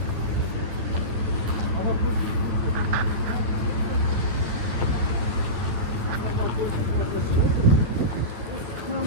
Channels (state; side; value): late; left; 9.7 ms